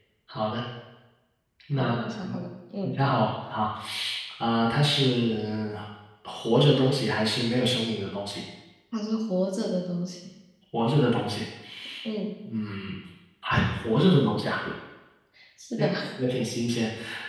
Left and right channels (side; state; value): both; identical; correlation 1.00